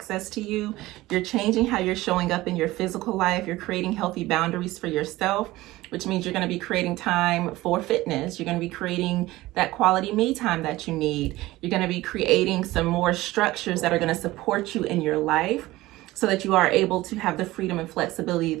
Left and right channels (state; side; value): quieter; left; 18.1 dB